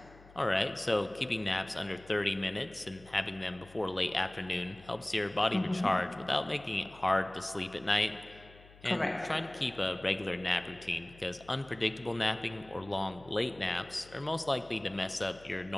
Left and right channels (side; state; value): left; noise; hum, 23 dB below the sound